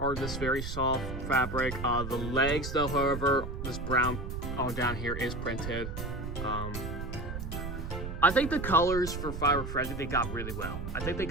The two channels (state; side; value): noise; right; rumble, 6 dB below the sound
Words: this very soft fabric. The legs, though, however, this brown on down here is printed. I think the colors for Firework Freddy, they got really well. I think they